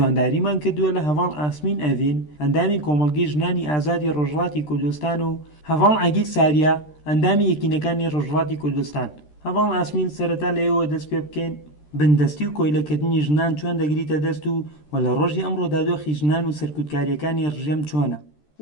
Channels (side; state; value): right; late; 13 ms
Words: کردووە لە هەڤاڵ ئاسمین ئەڤین، ئەندامی کۆمەڵگەی ژنانی ئازادی ڕۆژهەڵاتی کوردستان و هەڤاڵ عەگیل ساریا، ئەندامی یەکینەکانی ڕۆژهەڵاتی کوردستان. هەڤاڵ ئاسمین سەرەتا لەوێەوە دەست پێ بکەین بندەستی و کۆیلەکردنی ژنان چۆن دەگریتە دەست و لە ڕۆژی ئەمڕۆدا دۆخی ژنان و سەرکوتکاریەکانی ڕژێم چۆنە.